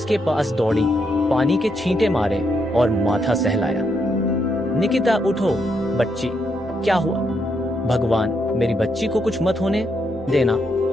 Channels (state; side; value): normal; both; correlation 0.78